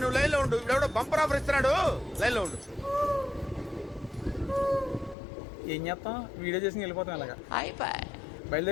నువ్వు లైన్లో ఉండు. ఇప్పుడు బంపర్ ఆఫర్ ఇస్తున్నాడు, లైన్లో ఉండు. ఏం చేస్తాం, వీడియో చేసి వెళ్ళిపోతాం ఇలాగా.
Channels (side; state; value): right; drops out; at 5.2 s